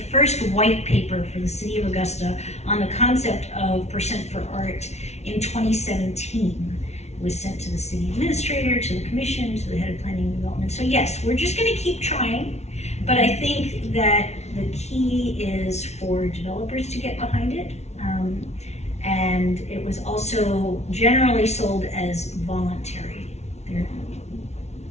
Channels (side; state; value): right; late; 0.32 ms